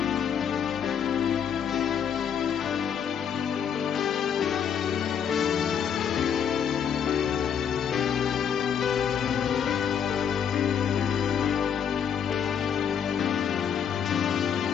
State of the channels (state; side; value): quieter; right; 8.0 dB